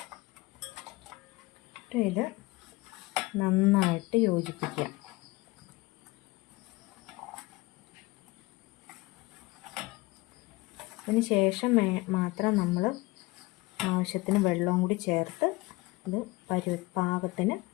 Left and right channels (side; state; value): right; quieter; 22.2 dB